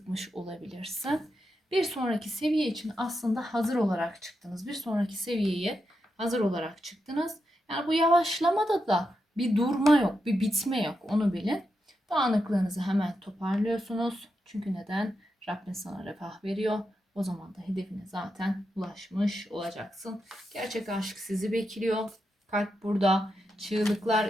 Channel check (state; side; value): normal; both; correlation 0.86